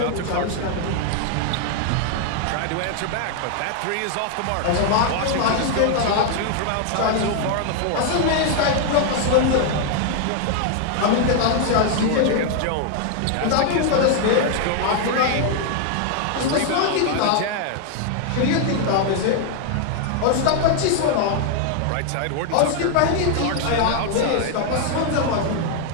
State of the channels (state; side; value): different; both; correlation 0.00